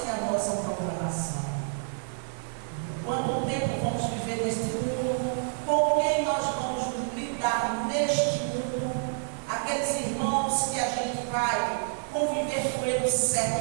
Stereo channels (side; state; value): left; silent; 59 dB below the other